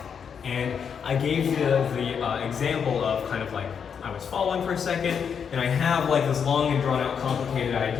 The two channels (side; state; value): right; quieter; 7.0 dB